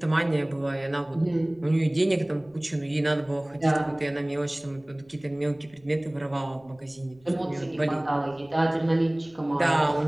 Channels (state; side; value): noise; left; rumble, 29 dB below the sound